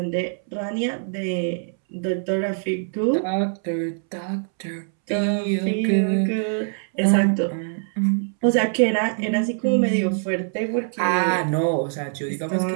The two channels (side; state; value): left; silent; 63 dB below the other